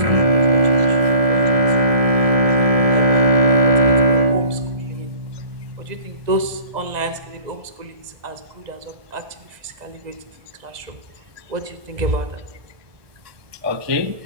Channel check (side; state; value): left; late; 2.0 ms